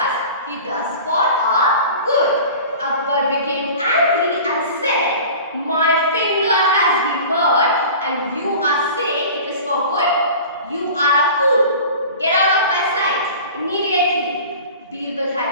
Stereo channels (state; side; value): inverted; both; correlation -0.39